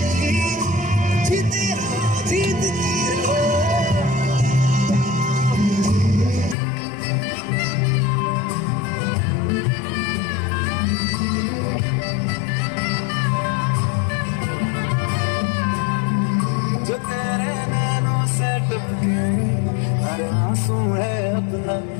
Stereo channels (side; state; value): right; drops out; at 6.6 s